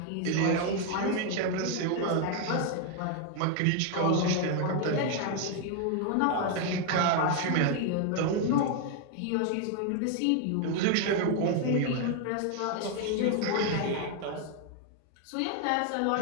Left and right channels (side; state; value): both; different; correlation 0.01